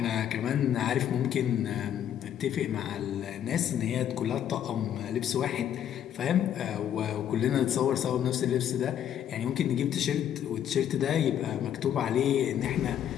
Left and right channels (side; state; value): right; quieter; 10.0 dB